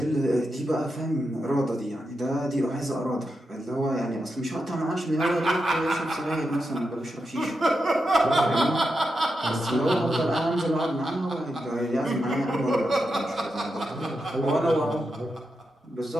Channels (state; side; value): normal; both; correlation 0.87